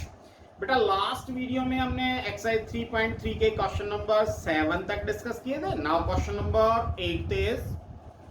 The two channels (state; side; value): identical; both; correlation 1.00